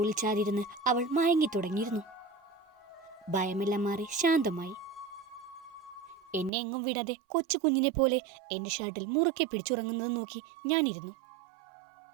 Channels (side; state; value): left; drops out; at 6.5 s